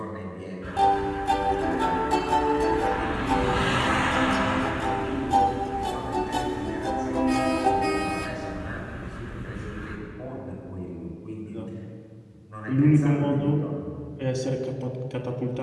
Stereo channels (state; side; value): identical; both; correlation 1.00